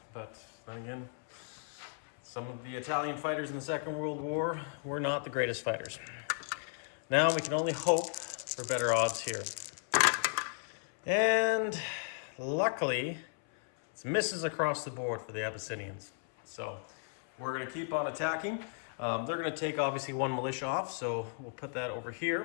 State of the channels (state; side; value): silent; right; 55 dB below the other